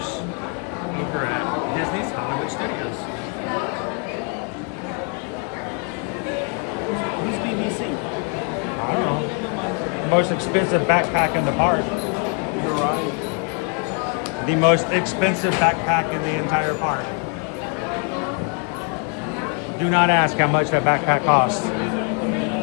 over at Disney's Hollywood Studios. Who's BBC? The most expensive backpack in the park. You're right. The most expensive backpack in the entire park. Do not ask how much that backpack costs. Ain't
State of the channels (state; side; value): quieter; right; 37.1 dB